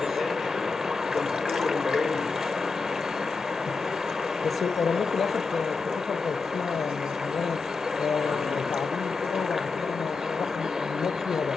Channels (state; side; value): quieter; right; 4.5 dB